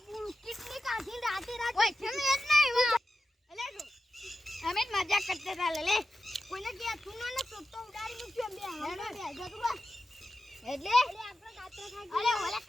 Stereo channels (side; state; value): both; normal; correlation 0.92